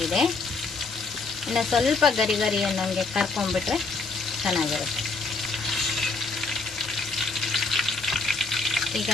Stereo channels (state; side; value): quieter; right; 3.9 dB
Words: ಇನ್ನು ಸ್ವಲ್ಪ ಗರಿ ಗರಿ ಅನ್ನೋಂಗೆ ಕರ್ಕೊಂಡ್ಬಿಟ್ರೆ ಚೆನ್ನಾಗಿರುತ್ತೆ. ಈಗ